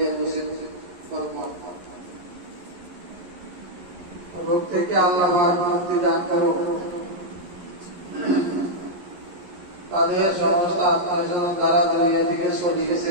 নসিব ফরমান। রোগ থেকে আল্লাহ পাক মুক্তি দান করো। তাদের সমস্ত আত্মীয়স্বজন দ্বারা দুনিয়া থেকে চলে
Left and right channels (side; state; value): left; late; 11 ms